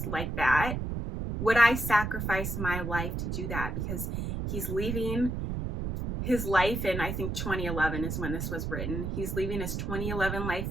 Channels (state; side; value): noise; right; rumble, 3 dB below the sound